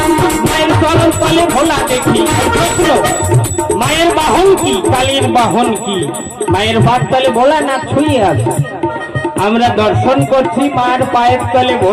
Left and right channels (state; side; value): identical; both; correlation 1.00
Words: মায়ের চরণ তলে ভোলা দেখি মায়ের বাহন কি, কালীর বাহন কি? মায়ের পায়ের তলে ভোলানাথ ছুঁয়ে আছে, আমরা দর্শন করছি মায়ের পায়ের তলে